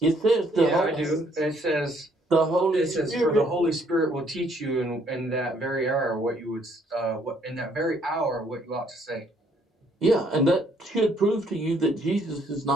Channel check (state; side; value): normal; both; correlation 0.66